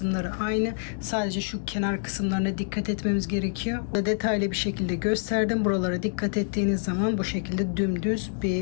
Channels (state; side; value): silent; right; digital silence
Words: aynı, sadece şu kenar kısımlarına dikkat etmemiz gerekiyor. Detaylı bir şekilde gösterdim. Buralara dikkat ettiğiniz zaman bu şekilde dümdüz